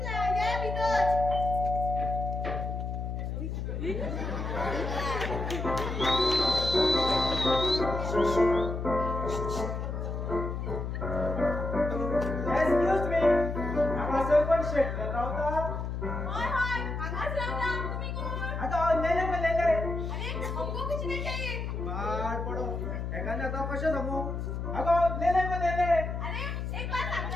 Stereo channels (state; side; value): noise; left; hum, 3 dB below the sound